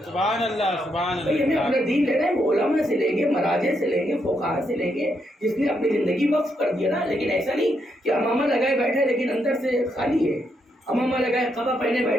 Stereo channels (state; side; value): normal; both; correlation 0.79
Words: سبحان اللہ سبحان بھائی ہمیں اللہ. اپنا دین لینا ہے، وہ علماء سے لیں گے، مراجع سے لیں گے، فقہاء سے لیں گے، جس نے اپنی زندگی وقف کر دیا نا. لیکن ایسا نہیں کہ امامہ لگائے بیٹھے لیکن اندر سے خالی ہے. امامہ لگائے قبا پہنے